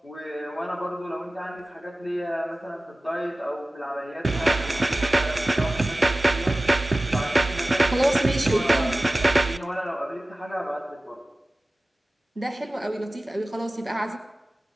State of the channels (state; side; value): normal; both; correlation 0.96